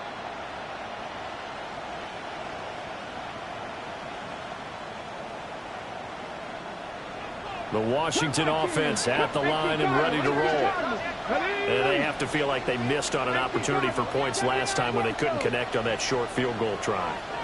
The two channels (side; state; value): both; identical; correlation 1.00